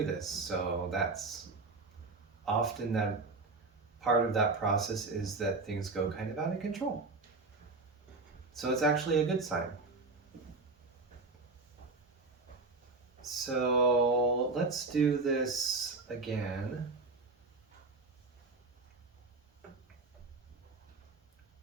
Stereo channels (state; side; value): quieter; left; 3.7 dB